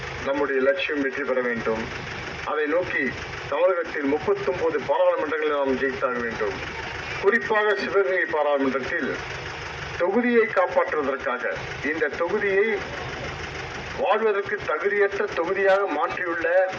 நம்முடைய லட்சியம் வெற்றி பெற வேண்டும். அதை நோக்கி தமிழகத்தில் 39 பாராளுமன்றங்களை நாம் ஜெயித்தாக வேண்டும். குறிப்பாக சிவகங்கை பாராளுமன்றத்தில் தொகுதியை காப்பாற்றுவதற்காக, இந்த தொகுதியை வாழ்வதற்கு தகுதியற்ற தொகுதியாக மாற்றியுள்ள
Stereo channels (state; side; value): identical; both; correlation 1.00